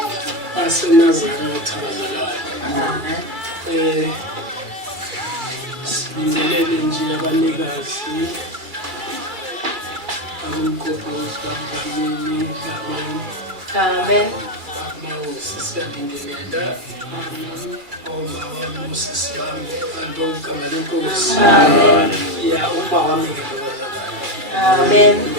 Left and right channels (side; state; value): left; late; 2.3 ms